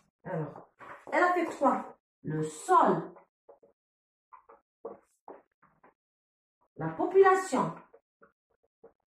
alors elle affecte quoi? Le sol, la population,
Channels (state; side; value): identical; both; correlation 1.00